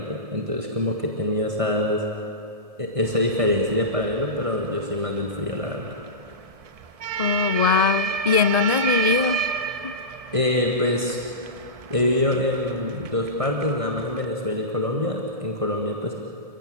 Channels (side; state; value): left; late; 1.7 ms